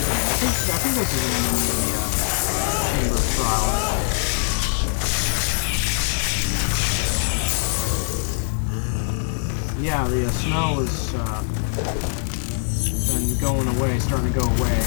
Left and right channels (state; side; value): silent; right; digital silence